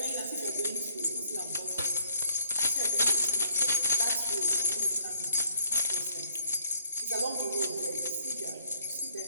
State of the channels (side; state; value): both; inverted; correlation -0.64